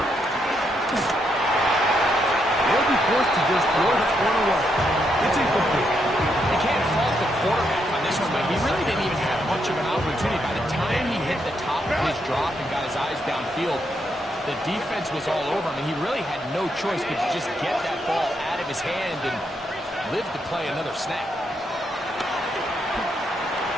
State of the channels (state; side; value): normal; both; correlation 0.78